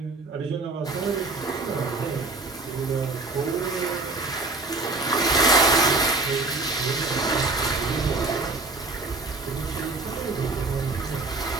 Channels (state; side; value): quieter; left; 3.4 dB